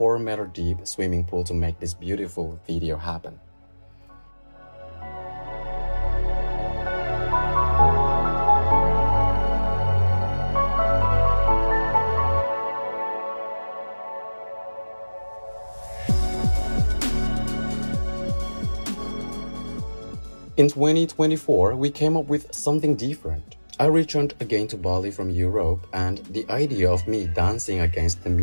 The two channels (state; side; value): inverted; both; correlation -1.00